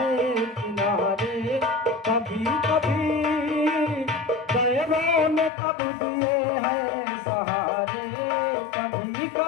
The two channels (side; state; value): right; drops out; at 5.5 s